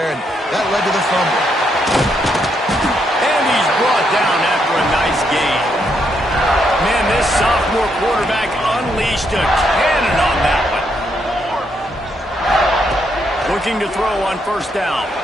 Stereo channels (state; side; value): normal; both; correlation 0.77